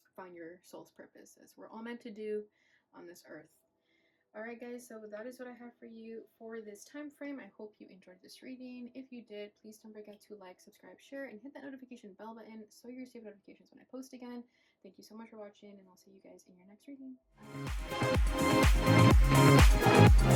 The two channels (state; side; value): identical; both; correlation 1.00